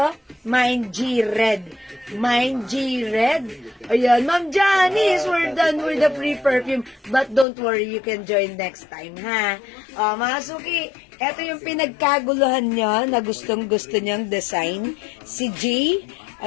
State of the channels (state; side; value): drops out; right; at 7.5 s